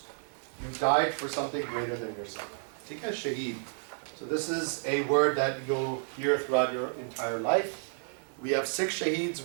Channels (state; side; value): silent; left; 57 dB below the other